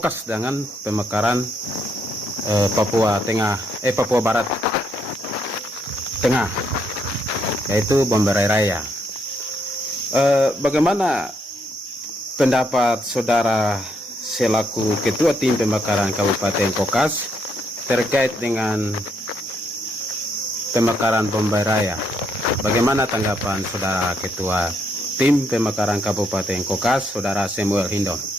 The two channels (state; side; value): normal; both; correlation 0.75